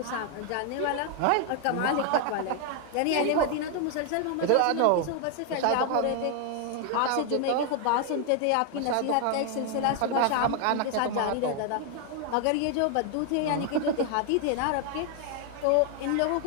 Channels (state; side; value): different; both; correlation 0.00